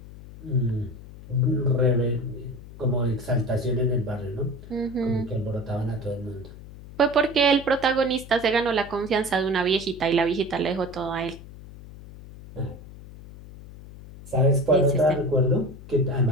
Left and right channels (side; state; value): left; noise; hum, 16 dB below the sound